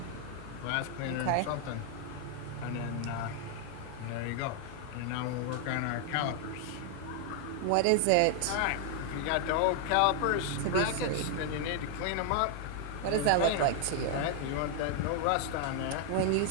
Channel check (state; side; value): different; both; correlation 0.00